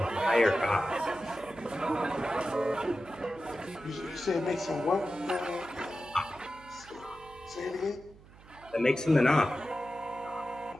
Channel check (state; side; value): noise; right; hum, 22 dB below the sound